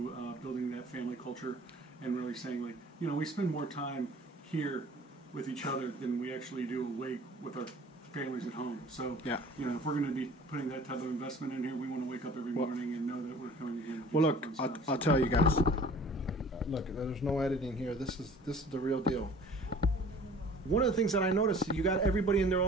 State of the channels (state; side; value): normal; both; correlation 0.48